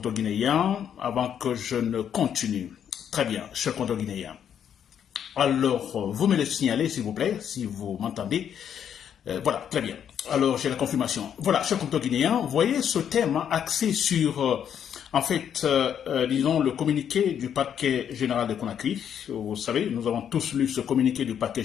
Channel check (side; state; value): right; quieter; 8.8 dB